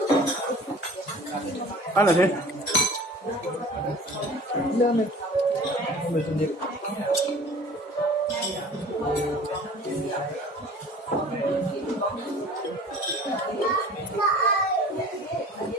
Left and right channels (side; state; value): both; normal; correlation 0.45